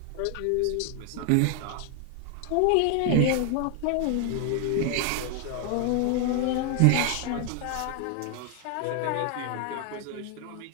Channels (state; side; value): different; both; correlation 0.00